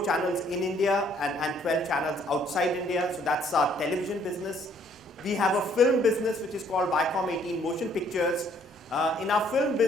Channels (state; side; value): normal; both; correlation 0.64